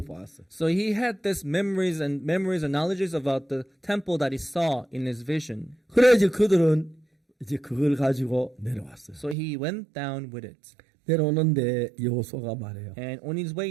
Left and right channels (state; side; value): drops out; left; at 9.3 s